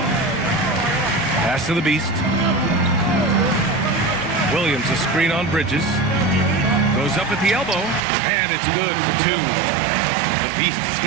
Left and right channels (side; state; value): left; drops out; at 8.0 s